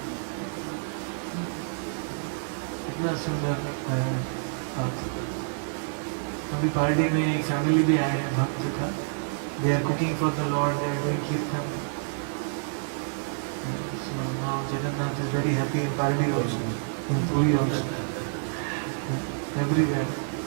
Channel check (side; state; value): left; silent; digital silence